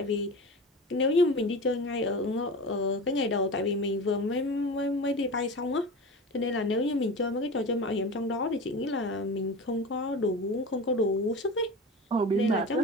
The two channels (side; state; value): both; normal; correlation 0.30